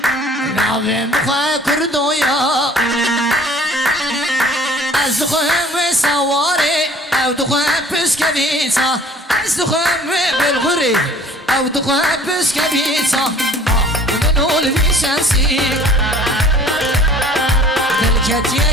ناویم بخواه کردویا از دخواه سواره او دخواه پسکویتا از دخواه بلغوری او دخواه پسکویتا منول بیشنسی دلکت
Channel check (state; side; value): normal; both; correlation 0.51